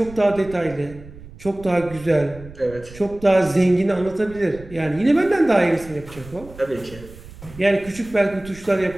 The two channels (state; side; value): noise; right; rumble, 18 dB below the sound